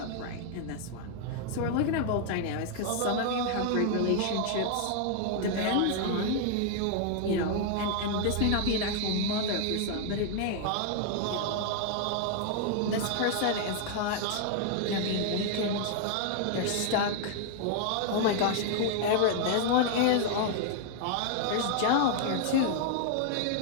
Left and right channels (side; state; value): both; different; correlation 0.00